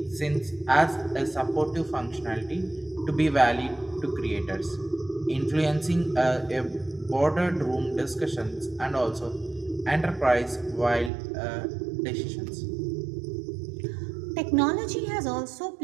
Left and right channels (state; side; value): drops out; left; at 11.1 s